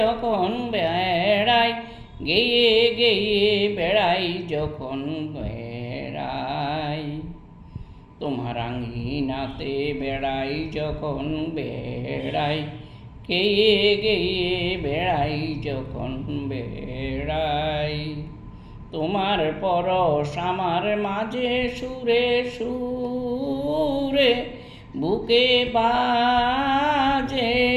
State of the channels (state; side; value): identical; both; correlation 1.00